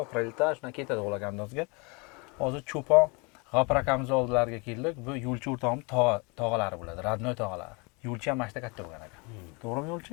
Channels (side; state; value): right; quieter; 29.9 dB